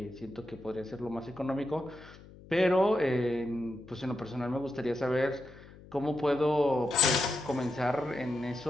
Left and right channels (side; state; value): left; noise; hum, 20 dB below the sound